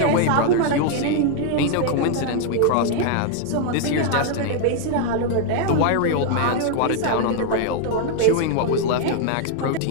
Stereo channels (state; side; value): different; both; correlation 0.00